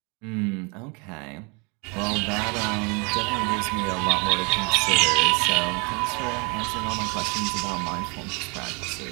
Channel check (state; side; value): quieter; left; 31.1 dB